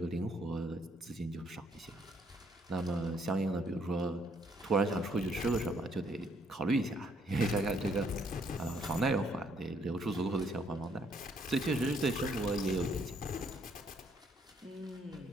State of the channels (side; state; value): both; normal; correlation 0.69